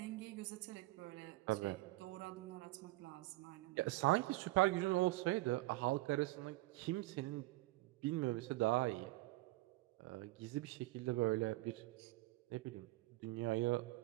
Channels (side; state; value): left; quieter; 19.7 dB